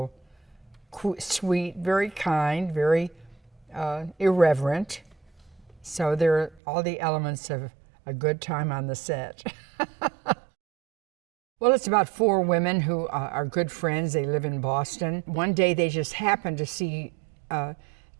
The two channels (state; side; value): drops out; left; at 6.6 s